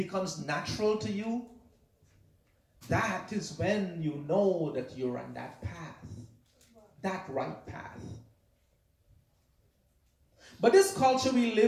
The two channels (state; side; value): identical; both; correlation 1.00